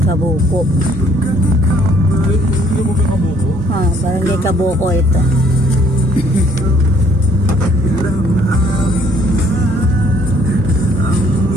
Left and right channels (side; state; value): both; normal; correlation 0.63